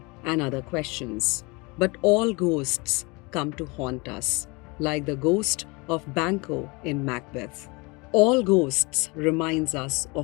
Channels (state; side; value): quieter; right; 27.3 dB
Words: and other questions. But all ghosts come to haunt us, like the ghost of Banquo in Macbeth. All ghosts reminds us